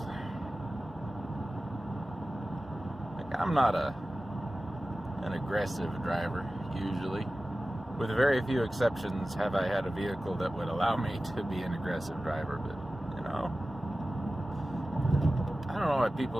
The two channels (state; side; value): normal; both; correlation 0.96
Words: Like, I'm not an aggressive driver, usually. With very few exceptions have I had a vehicle that would allow me to be an aggressive driver, but, you know, I don't know why